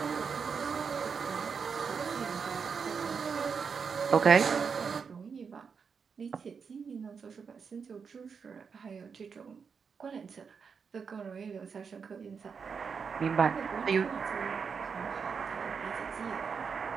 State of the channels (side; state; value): left; quieter; 6.0 dB